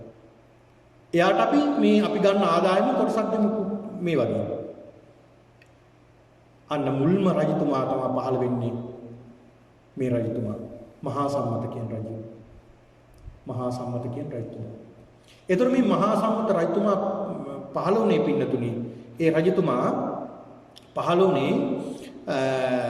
එයාට අපි ගන්න ආදායම කොටසක් දෙමු මේ වගේ. අන්න මුල්ම රජතුමා තමයි පහළ වෙන්නේ. මේ රජතුමා මහා සම්මත කියන රජු. මහා සම්මත කියන රජතුමා. ඒතර මේ මහා සම්මත රජතුමා පහළ වුණේ පින්නතුනි. ඒ රජතුමා පහළ වුණේ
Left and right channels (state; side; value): identical; both; correlation 1.00